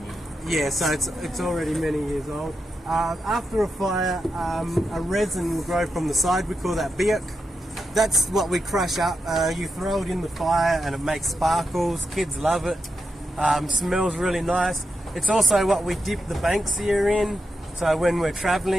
Yeah, so it's already many years old. After a fire, a resin will grow from the side. We call that biak. That's what we crush up. You throw it in the fire and it makes sparkles. Kids love it. Smells really nice. It's also what we dip the banksia in. So when we're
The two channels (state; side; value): normal; both; correlation 0.86